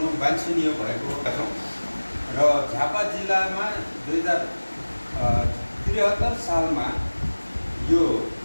वाञ्छनीय भएको छौँ र झापा जिल्लामा 2073 सालमा यो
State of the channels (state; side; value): inverted; both; correlation -1.00